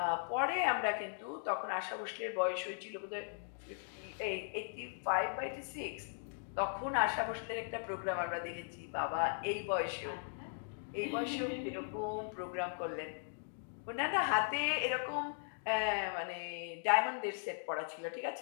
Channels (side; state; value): right; silent; digital silence